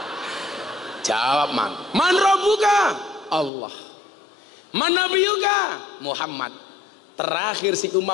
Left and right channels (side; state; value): right; drops out; at 3.5 s